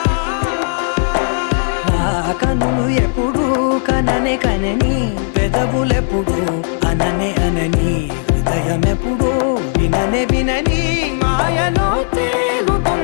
కన్నులు ఎప్పుడు కననే కనని పెదవులెప్పుడు అననే అనని హృదయం ఎప్పుడు విననే వినని మాయలో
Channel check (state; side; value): silent; right; 68 dB below the other